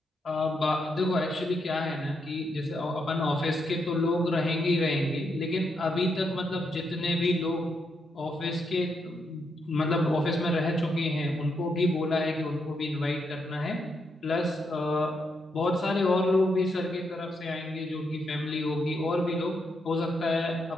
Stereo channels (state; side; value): normal; both; correlation 0.80